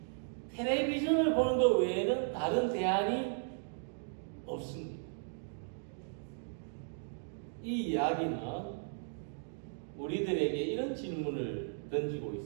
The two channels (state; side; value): silent; left; digital silence